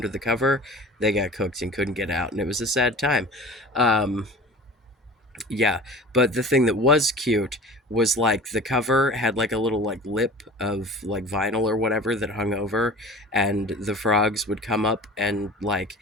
the cover, they got cooked and couldn't get out, and it was a sad time. Um, yeah, but the thing that was cute was like the cover had like a little like lip of like vinyl or whatever that hung over, and the frogs would come up and like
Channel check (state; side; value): normal; both; correlation 0.39